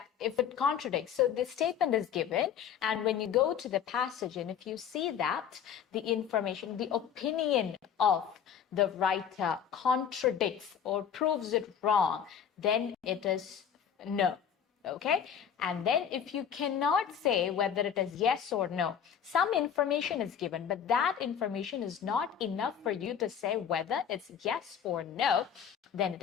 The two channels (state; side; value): quieter; right; 8.2 dB